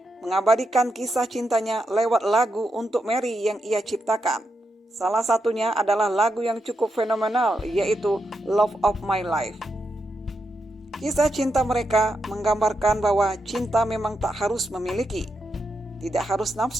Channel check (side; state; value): both; normal; correlation 0.84